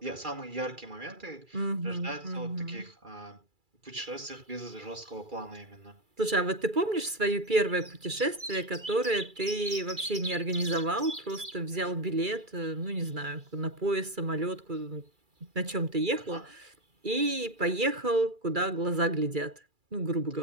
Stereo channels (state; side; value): late; left; 2.3 ms